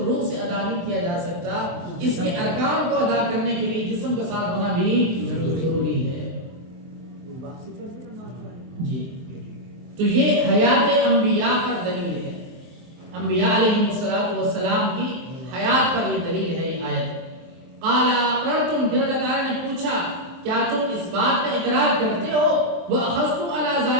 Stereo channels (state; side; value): late; left; 23 ms